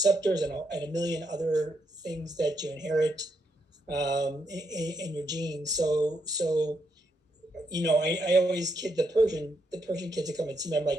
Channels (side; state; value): both; normal; correlation 0.79